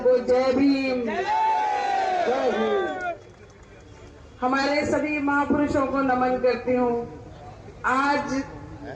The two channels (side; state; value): both; identical; correlation 1.00